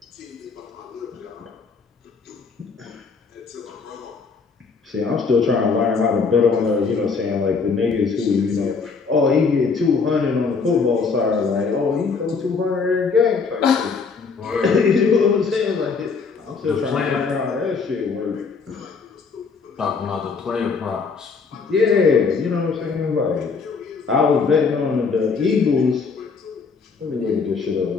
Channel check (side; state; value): right; quieter; 5.0 dB